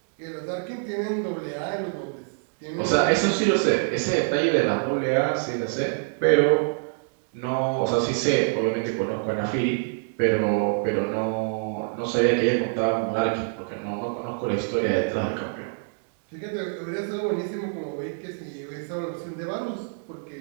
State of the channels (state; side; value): silent; left; digital silence